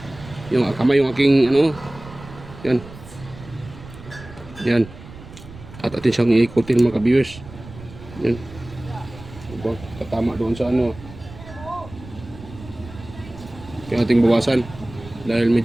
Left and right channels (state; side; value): noise; right; rumble, 17 dB below the sound